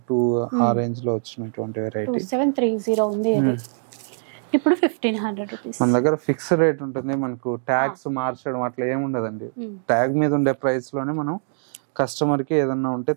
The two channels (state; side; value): silent; left; digital silence